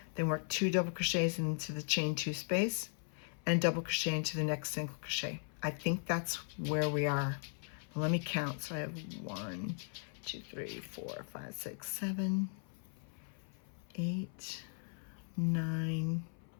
Then work 2 double crochets into the chain 2 space and double crochet into the next single crochet. I think that's where we are. Well, let me count. So I have 1, 2, 3, 4, 5, 6, 7, 8, 9,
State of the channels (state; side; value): silent; right; 52 dB below the other